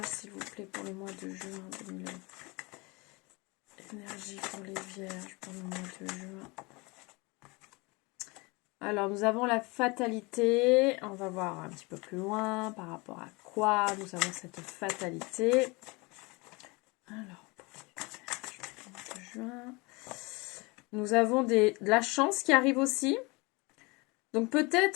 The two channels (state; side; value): quieter; right; 26.4 dB